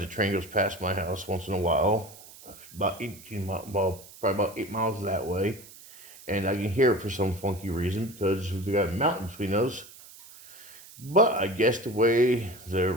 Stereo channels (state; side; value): noise; right; hiss, 19 dB below the sound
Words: train goes past my house once in a while, about 18 miles, well, probably about 8 miles that way, and I can hear it for some funky reason because we got a mountain between us. But I guess the way